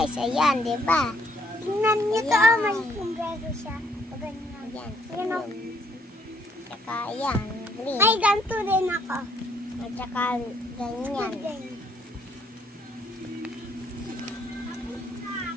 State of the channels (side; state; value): both; normal; correlation 0.67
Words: ayan, di ba? Tingnan niyo to, Ayan. may sombrero siya. Ganyan. Ayan, Ayan o. tsaka ayan, green. Ay, ganito rin ako. At saka ganyan.